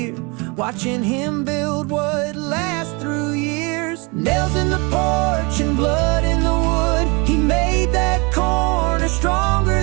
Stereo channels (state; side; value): quieter; left; 29.1 dB